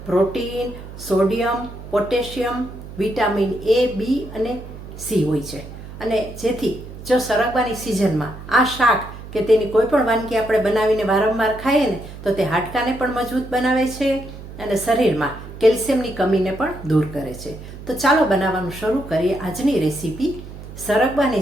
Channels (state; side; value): noise; right; hum, 13 dB below the sound